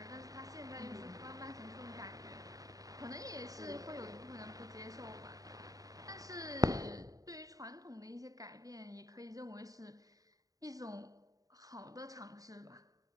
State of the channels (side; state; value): left; late; 0.17 ms